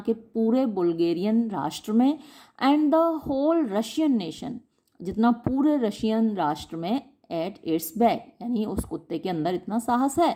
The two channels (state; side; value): identical; both; correlation 1.00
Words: पूरे बुल्गेरियन राष्ट्र में, and the whole Russian nation, जितना पूरे रशियन राष्ट्र में, एट इट्स बैक, यानी उस कुत्ते के अंदर इतना साहस है।